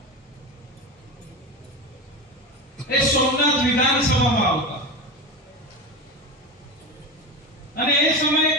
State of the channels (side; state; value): both; normal; correlation 0.23